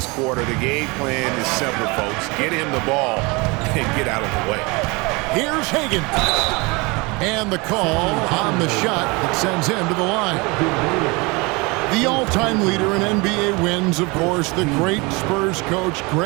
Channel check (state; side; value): quieter; left; 26.5 dB